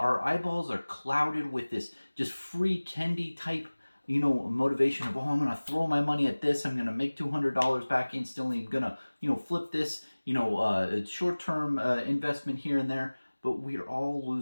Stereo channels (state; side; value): inverted; both; correlation -1.00